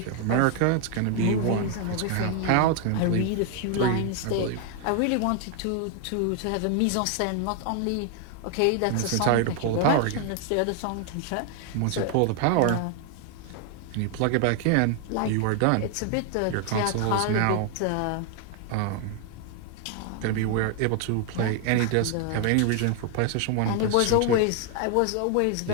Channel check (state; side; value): different; both; correlation 0.00